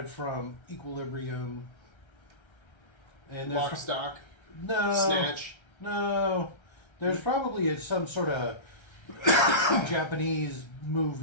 from Equilibrium. And Lock, Stock, no, Snatch. no. There's probably some sort of Japanese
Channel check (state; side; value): late; right; 1.3 ms